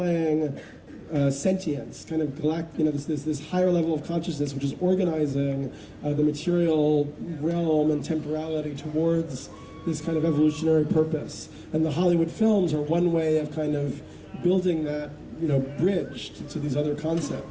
sentience, kind of this higher level of consciousness, which is organizing the material realm and temporality towards this kind of evolutionary purpose. And the Hollywood films are one way of kind of building that, you know, bridge to these other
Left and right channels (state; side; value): identical; both; correlation 1.00